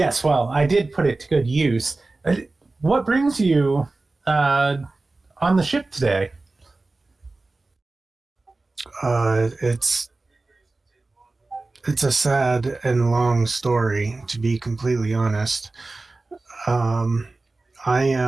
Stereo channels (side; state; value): left; quieter; 3.3 dB